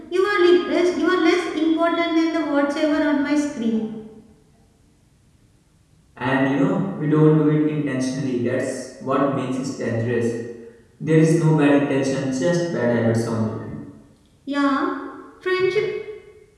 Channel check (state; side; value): identical; both; correlation 1.00